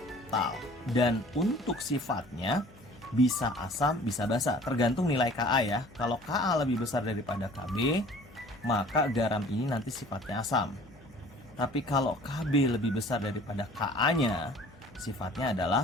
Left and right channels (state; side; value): noise; left; hum, 24 dB below the sound